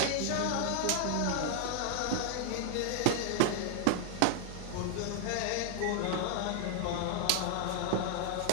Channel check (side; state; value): both; different; correlation 0.00